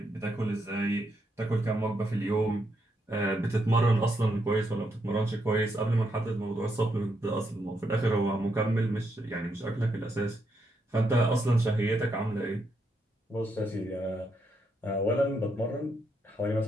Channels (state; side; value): normal; both; correlation 0.79